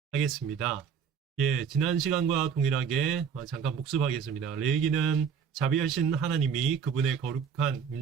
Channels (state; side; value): quieter; left; 7.0 dB